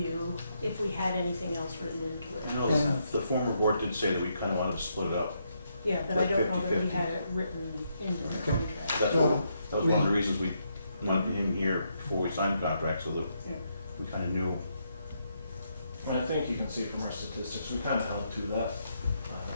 if we had anything else written into I it. know Yeah. the former board did say that we kind of wanted to split it up. Yeah, but I don't know that we 50-50. had it written into the Okay. contract. That Well, was one of the reasons we wanted him here before we signed the contract, so that Yeah. we kind of knew. And I think you can see from our statistics, we kind of held to that.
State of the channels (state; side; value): inverted; both; correlation -0.78